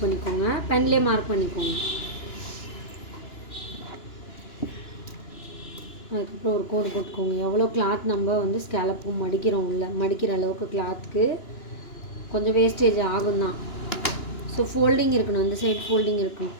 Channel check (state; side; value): late; right; 2.9 ms